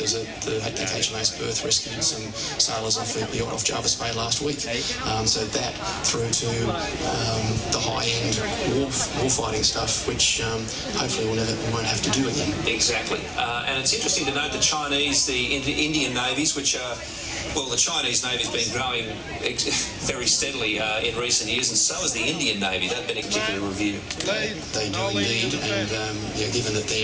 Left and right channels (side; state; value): both; identical; correlation 1.00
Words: the HMAS Perth rescued some sailors off the yacht off Jarvis Bay last week. So that through to the high-end war fighting stuff, which hopefully we won't have to do again. Exactly. And it's interesting to note the Chinese, the Indian navies, which are, well, the Chinese Navy's been growing very steadily in recent years, and so has the Indian Navy. They've been a particular review. They do indeed, and given that